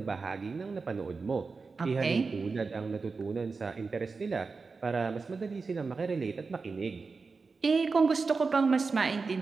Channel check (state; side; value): quieter; left; 4.5 dB